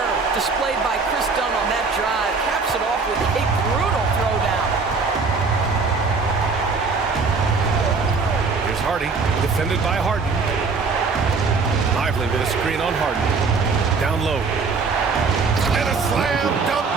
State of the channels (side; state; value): left; quieter; 4.6 dB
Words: displayed by Chris Dunn on that drive? Caps it off with a brutal throwdown. Here's Hardy, defended by Harden. Lively with a screen on Harden. Down low. And a slam dunk